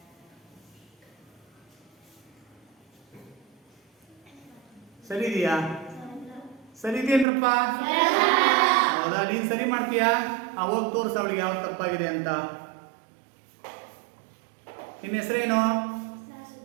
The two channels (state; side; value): drops out; left; at 7.2 s